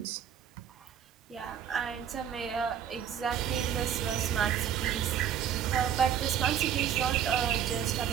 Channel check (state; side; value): quieter; left; 9.1 dB